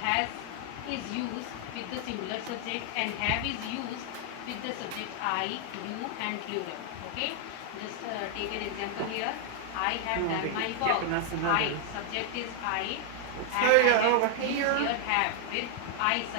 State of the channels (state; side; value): different; both; correlation 0.00